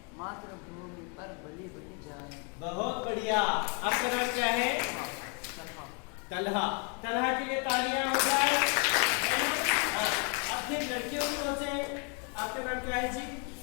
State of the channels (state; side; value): quieter; right; 34.2 dB